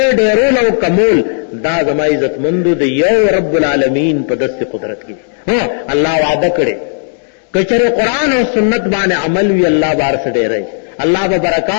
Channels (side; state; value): right; silent; digital silence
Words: ډیرول او کمول، دا زما عزت مندو د یو رب العالمین په دست قدرت کې. ها الله وعده کړي کچره قرآن او سنت باندې عمل وی الله بار سره ډیرای، الله به